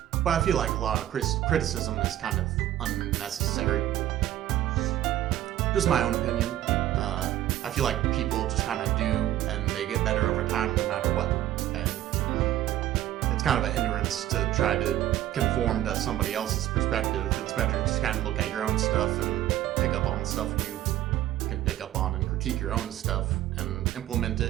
But I feel like a lot of criticism is kind of unnecessary. Just my own opinion. I feel like people just kind of do, and they get better over time no matter what. And it's kind of a hindrance to try to conform to somebody else's perspective. It's better to just kind of look at your own stuff and pick up on the stuff you can pick up on and critique your own stuff and implement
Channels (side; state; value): left; quieter; 13.2 dB